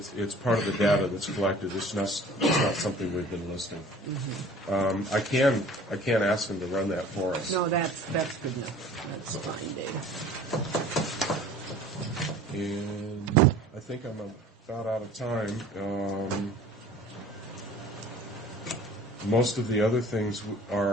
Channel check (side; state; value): both; normal; correlation 0.47